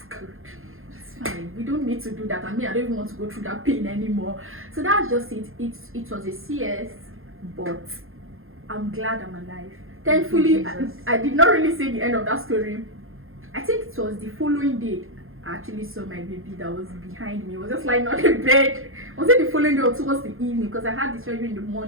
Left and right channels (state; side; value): late; left; 0.60 ms